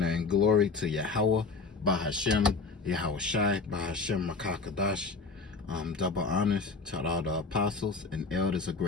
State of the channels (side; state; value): right; quieter; 4.2 dB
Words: and glory to Yahweh, Bahashem, Yahweh Shai, Bahashem Makakadash. Double honors to all the apostles and elders of